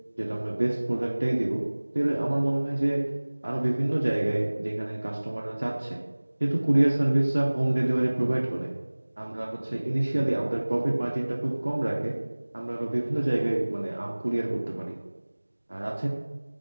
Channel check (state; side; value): inverted; both; correlation -1.00